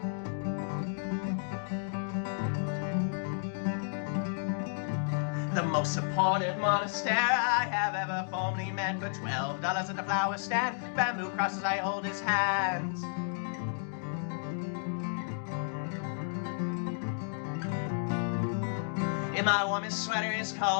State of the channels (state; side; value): silent; right; digital silence